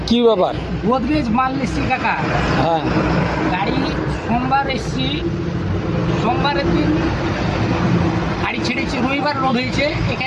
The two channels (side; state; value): both; identical; correlation 1.00